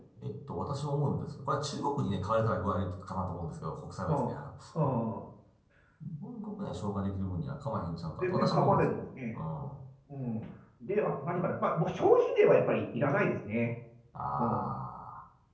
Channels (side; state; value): both; identical; correlation 1.00